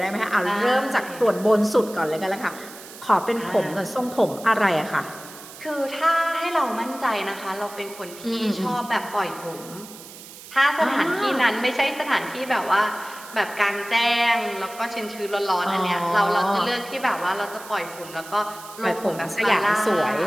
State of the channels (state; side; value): noise; right; hiss, 16 dB below the sound